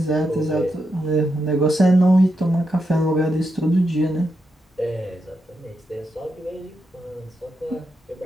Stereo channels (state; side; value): normal; both; correlation 0.85